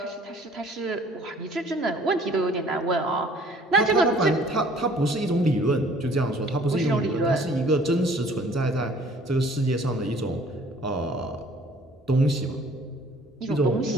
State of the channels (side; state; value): both; normal; correlation 0.55